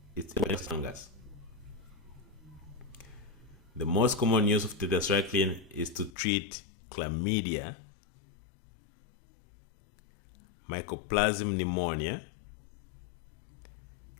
It's against fungus. The most common use of tetracycline is to treat chlamydia, mycoplasma pneumonia,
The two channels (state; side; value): drops out; right; at 6.1 s